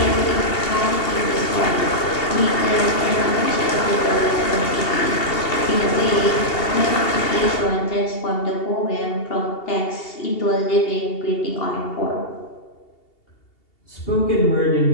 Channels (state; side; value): late; right; 2.8 ms